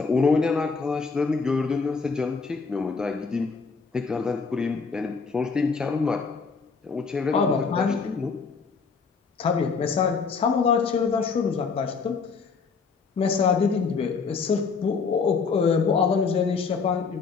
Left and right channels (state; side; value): quieter; right; 5.0 dB